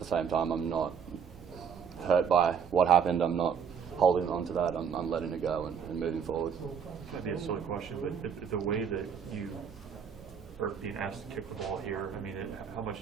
same time I'm not hurt by what happened. I'm not holding on to that. I'm letting it go and moving forward. Might be a silly question, but the way that you are being asked to kick the ball here, I mean, how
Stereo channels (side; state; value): left; quieter; 7.1 dB